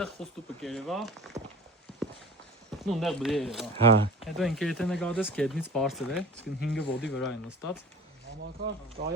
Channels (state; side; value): normal; both; correlation 0.40